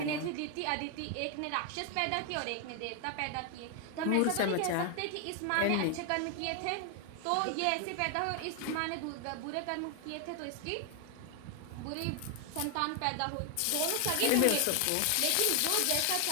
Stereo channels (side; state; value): both; different; correlation 0.00